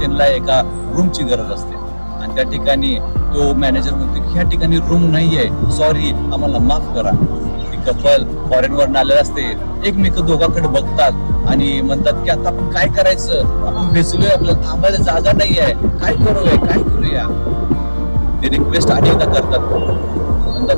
एका रूमची गरज असते. आणि त्या ठिकाणी तो मॅनेजर म्हणतो की ह्या ठिकाणी रूम नाहीये, सॉरी, आम्हाला माफ करा. ती कपल फॉरेनवरून आलेलं असते, एकमेक दोघांकडे बघतात आणि म्हणतात की आता आपण काय करायचं, आपण भिजलोय, आपल्याला थांबायला जागा नाही आहे, काय करूया. ते रिक्वेस्ट अनेकदा करतात,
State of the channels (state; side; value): inverted; both; correlation -1.00